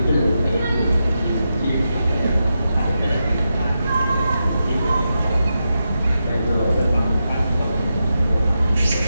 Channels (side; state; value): both; inverted; correlation -0.88